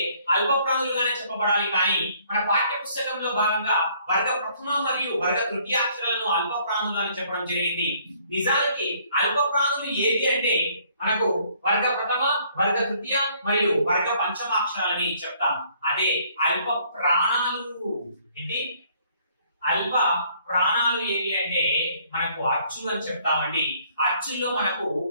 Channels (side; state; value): both; inverted; correlation -0.63